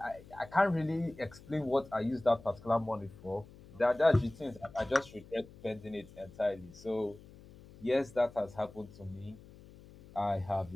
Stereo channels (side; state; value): left; noise; hum, 20 dB below the sound